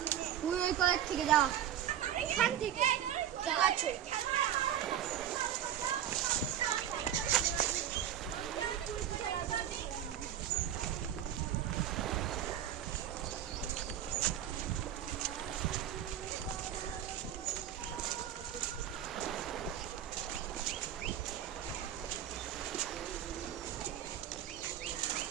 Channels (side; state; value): left; quieter; 10.7 dB